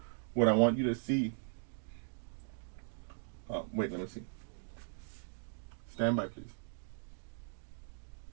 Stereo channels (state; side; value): silent; left; digital silence